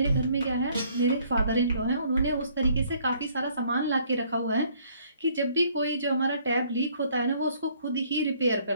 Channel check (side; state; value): both; inverted; correlation -0.62